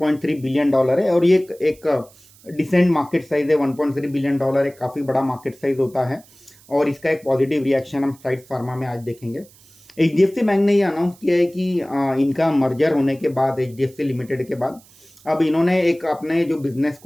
बिलियन है और ये एक डिसेंट मार्केट साइज है। $1.3 बिलियन एक काफ़ी बड़ा मार्केट साइज होता है और इसका एक पॉजिटिव रिएक्शन हम साइड्स फार्मा में आज देखेंगे। HDFC बैंक ने ये अनाउंस किया है कि इनका मर्जर होने के बाद HDFC लिमिटेड के बाद अब इन्होंने एक अपने जो बिजनेस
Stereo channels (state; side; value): noise; right; hiss, 27 dB below the sound